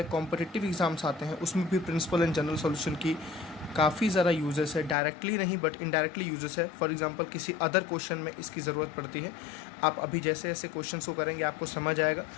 कॉम्पिटिटिव एग्जाम्स आते हैं, उसमें भी प्रिंसिपल एंड जनरल सॉल्यूशन की काफ़ी ज़्यादा यूजेस है। डायरेक्टली नहीं बट इनडायरेक्टली यूजेस है। फॉर एग्जांपल किसी अदर क्वेश्चन में इसकी ज़रूरत पड़ती है। आप अभी जैसे ऐसे क्वेश्चंस को करेंगे आपको समझ आएगा।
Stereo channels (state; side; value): drops out; right; at 5.0 s